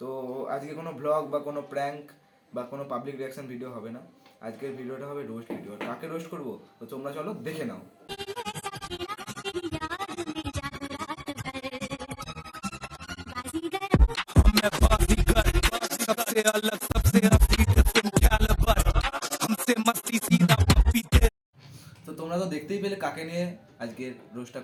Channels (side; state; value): both; identical; correlation 1.00